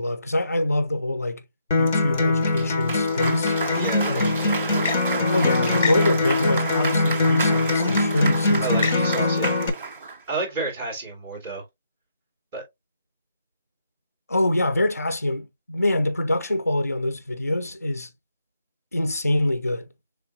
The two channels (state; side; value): inverted; both; correlation -0.76